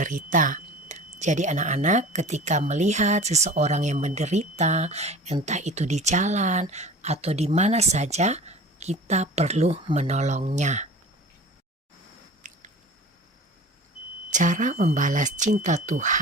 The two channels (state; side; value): normal; both; correlation 0.40